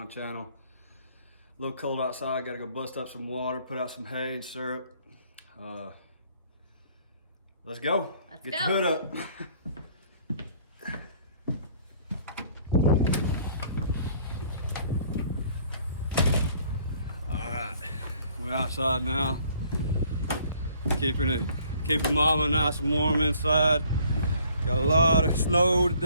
the channel. A little cold outside, gotta go bust up some water, put out some hay and syrup. Let's go. Let's Get go. the hood up. Alright, we're outside now. Keeping mama nice and warm inside. Got a lot of snow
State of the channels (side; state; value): both; inverted; correlation -0.59